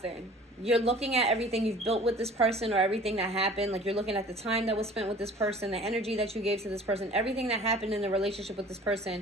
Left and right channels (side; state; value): both; normal; correlation 0.46